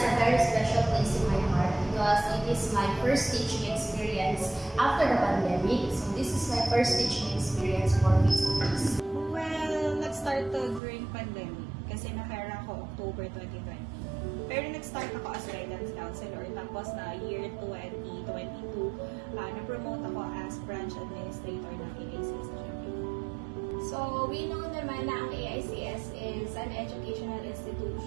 a very special place in my heart because it is my first teaching experience after the pandemic. So this is my first teaching experience for face-to-face. Well, nag-start to during pandemic kasi na-hire ako October 2020. Pero nag-start ako as guidance counselor tapos na year 2022, na-promote ako as branch administrator ng AICS. So, we know naman na ang AICS is an educational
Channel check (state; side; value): drops out; left; at 10.8 s